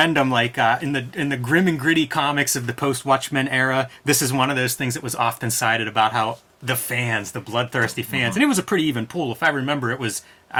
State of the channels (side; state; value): both; identical; correlation 1.00